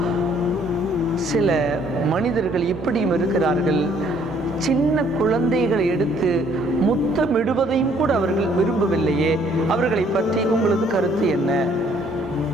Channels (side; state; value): both; normal; correlation 0.63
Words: சில மனிதர்கள் இப்படியும் இருக்கிறார்கள், சின்ன குழந்தைகளை எடுத்து முத்தமிடுவதையும் கூட அவர்கள் விரும்பவில்லையே, அவர்களை பற்றி உங்களது கருத்து என்ன?